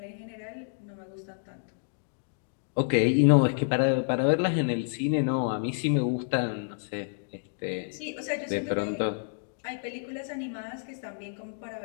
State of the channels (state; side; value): silent; right; digital silence